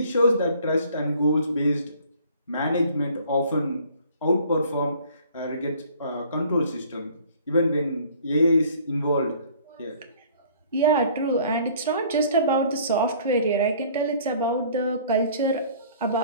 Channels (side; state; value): both; inverted; correlation -0.54